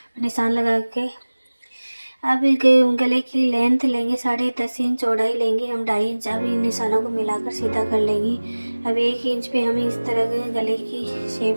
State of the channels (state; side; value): inverted; both; correlation -1.00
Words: निशान लगा के अब गले की लेंथ लेंगे 10.5 इंच, चौड़ाई लेंगे हम 2.5 इंच। अब इन निशानों को मिलाकर सीधा कर लेंगे। अब 1 इंच पे हम इस तरह के गले की